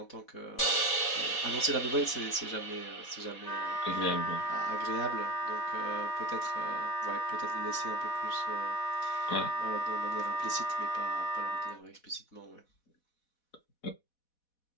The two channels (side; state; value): right; late; 4.1 ms